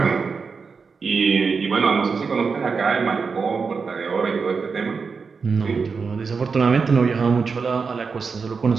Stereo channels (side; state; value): left; quieter; 5.1 dB